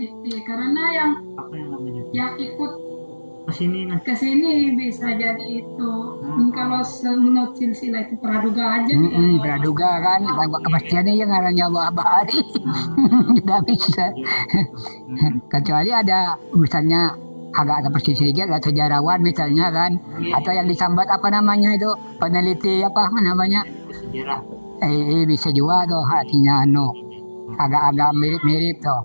Karena yang namanya ikut kesini nah. ke sini bisa jadi itu. Kalau menurut silsilah itu praduga aja. Praduga kan, kepastiannya yang ngarannya Bahari. Tidak bisa. Kecuali ada misalnya agak ada persis sedikit, ada sejarawan misalnya kan, atau yang disambat itu peneliti namanya, Sejarah. Bisa juga tuh hatinya agak-agak mirip-mirip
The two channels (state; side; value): inverted; both; correlation -1.00